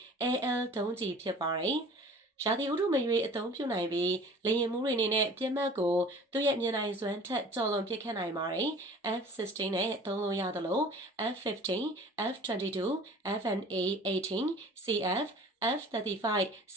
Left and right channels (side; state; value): both; normal; correlation 0.46